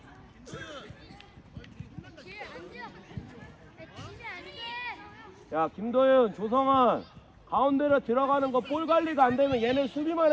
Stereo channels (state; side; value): identical; both; correlation 1.00